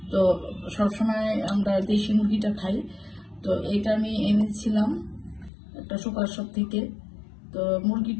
তো সবসময় আমরা দেশি মুরগিটা খাই। তো এটা আমি এনেছিলাম একটা সুপার শপ থেকে। তো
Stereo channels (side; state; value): right; drops out; at 5.5 s